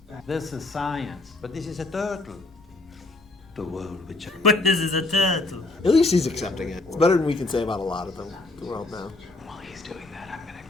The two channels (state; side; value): quieter; right; 3.1 dB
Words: This is science. But this is a turtle. The world which I... But this is a turtle. At least he's accepting it. It's better than we can say about a lot of them. The world now. While he's doing that, I'm gonna